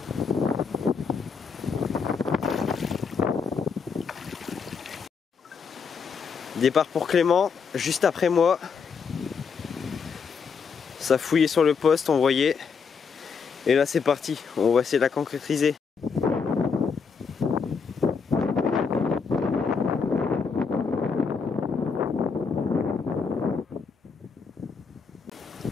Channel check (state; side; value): quieter; right; 5.7 dB